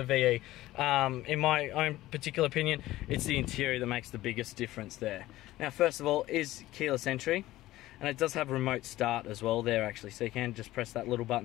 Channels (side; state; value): right; quieter; 16.2 dB